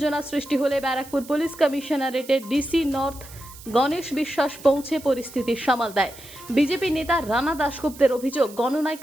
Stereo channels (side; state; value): right; noise; hiss, 18 dB below the sound